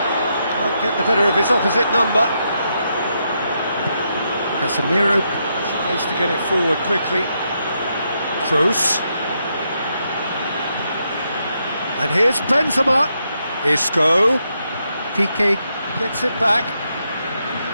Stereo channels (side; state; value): both; inverted; correlation -0.80